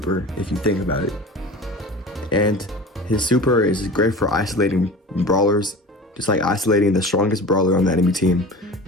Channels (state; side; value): normal; both; correlation 0.36